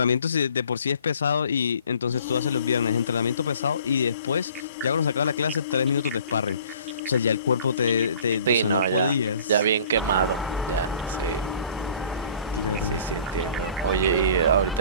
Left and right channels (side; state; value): both; inverted; correlation -0.51